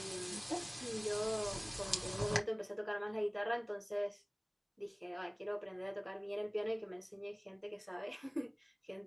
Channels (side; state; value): both; identical; correlation 1.00